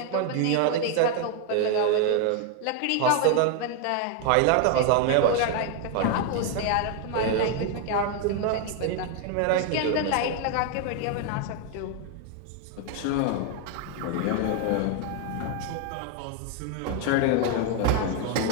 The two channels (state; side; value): different; both; correlation 0.00